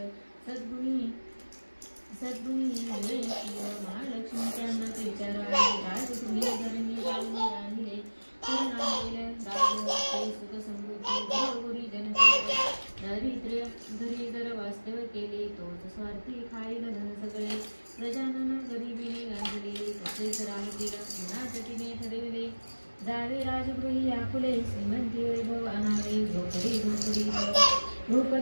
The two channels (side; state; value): both; inverted; correlation -1.00